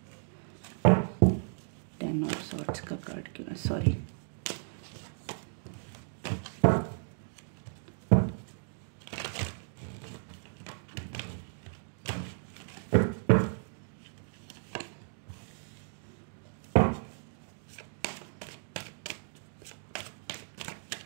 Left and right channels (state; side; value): silent; left; digital silence